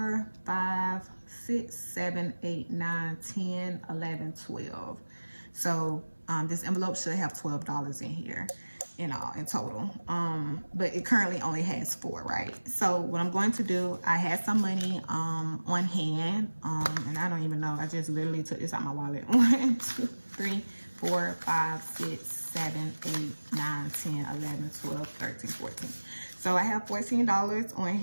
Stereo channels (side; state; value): both; inverted; correlation -1.00